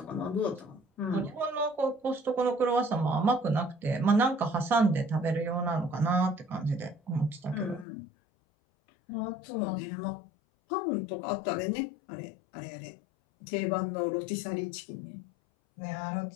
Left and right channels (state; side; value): drops out; right; at 7.9 s